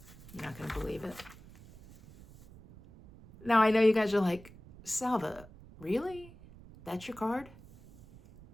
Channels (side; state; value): right; noise; rumble, 21 dB below the sound